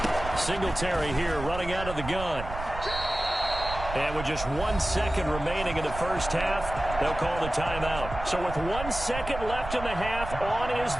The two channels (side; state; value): right; noise; rumble, 9 dB below the sound